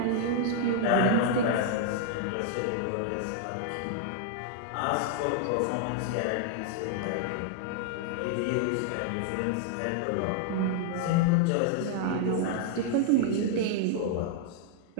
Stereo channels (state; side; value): different; both; correlation -0.01